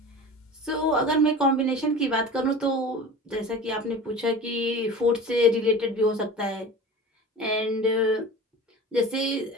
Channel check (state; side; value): normal; both; correlation 0.35